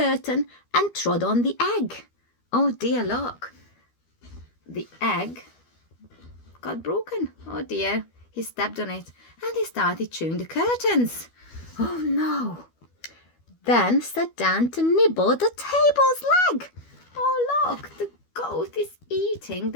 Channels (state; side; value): late; right; 12 ms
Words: and trod on the egg. Oh dear, look. The egg got broken. Oh dear. He stepped on it and he started chewing the curtains. Oh no. Then sat down to nibble the table's leg. Oh look, the goat is eating